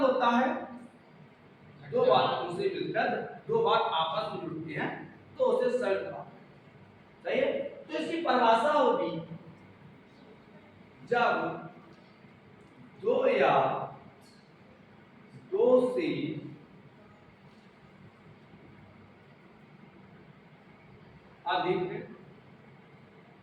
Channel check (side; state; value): both; identical; correlation 1.00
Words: होता है दो बातों से मिलकर दो बात आपस में जुड़ती हैं, तो उसे संयुक्त वाक्य। सही है? तो इसकी परिभाषा होगी जब दो या दो से अधिक